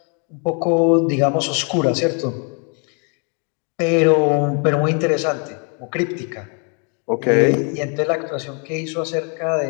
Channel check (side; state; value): right; quieter; 37.0 dB